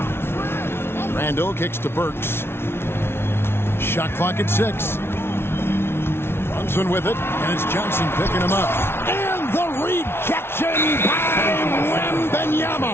Randall kicks to Burks. Shot clock at 6. Brunson with it, and it's Johnson picking him up. And the rejection by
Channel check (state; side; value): late; right; 0.12 ms